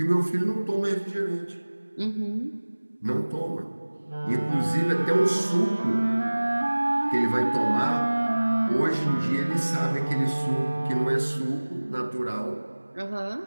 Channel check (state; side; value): inverted; both; correlation -1.00